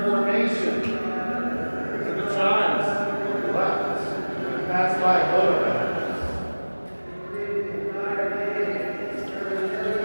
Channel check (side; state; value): both; inverted; correlation -1.00